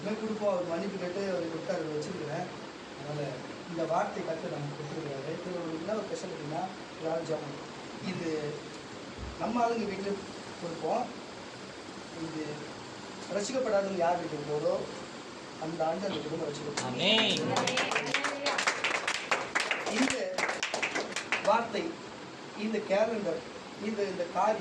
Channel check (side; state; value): both; identical; correlation 1.00